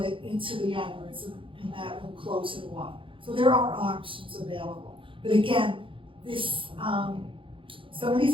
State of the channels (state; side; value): late; left; 0.25 ms